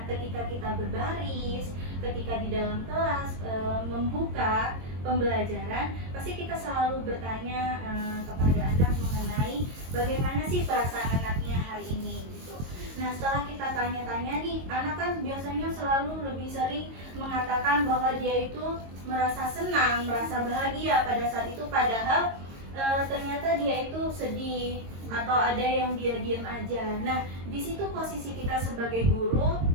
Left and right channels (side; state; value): left; late; 22 ms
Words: ketika kita berbaris, ketika di dalam kelas membuka pembelajaran, pasti kita selalu bertanya kepada anak mengenai bagaimana sih perasaan anaknya hari ini gitu. Nah, setelah kita tanya-tanya nih, anak kan biasanya selalu lebih sering mengatakan bahwa dia itu merasa senang, merasa bahagia pada saat itu, padahal ternyata dia itu sedih atau ada yang dia diam aja. Nah, di situ posisi kita sebagai guru